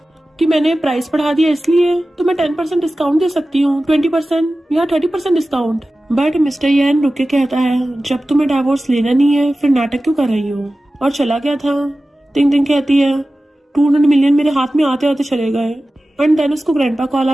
कि मैंने प्राइस बढ़ा दिया इसलिए तो मैं 10% डिस्काउंट दे सकती हूँ, 20% या 30% डिस्काउंट। बट मिस्टर यान रुक के कहता है, जब तुम्हें डाइवोर्स लेना नहीं है फिर नाटक क्यों कर रही हो? और चला गया था। तिंग तिंग कहती है, 200 मिलियन मेरे हाथ में आते आते चले गए। एंड देन उसको ग्रैंडपा कॉल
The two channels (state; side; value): normal; both; correlation 0.95